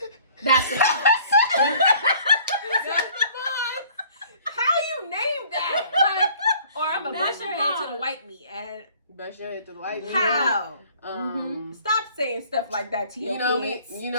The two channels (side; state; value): both; inverted; correlation -0.55